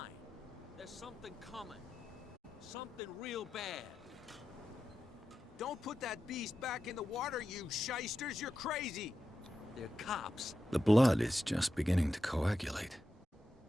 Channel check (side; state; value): both; normal; correlation 0.90